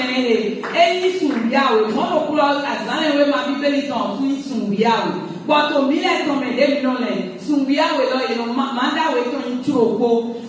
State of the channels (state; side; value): identical; both; correlation 1.00